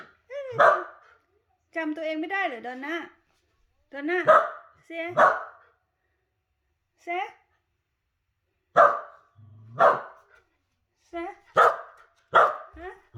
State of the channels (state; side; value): identical; both; correlation 1.00